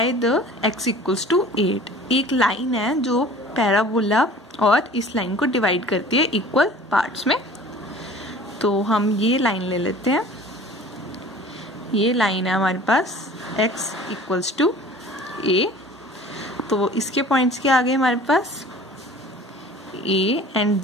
the x equals to 8। एक लाइन है जो पैराबोला और इस लाइन को डिवाइड करती है इक्वल पार्ट्स में, तो हम ये लाइन ले लेते हैं। ये लाइन है हमारे पास x इक्वल्स टू a, तो इसके पॉइंट्स के आगे हमारे पास a एंड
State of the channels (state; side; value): normal; both; correlation 0.45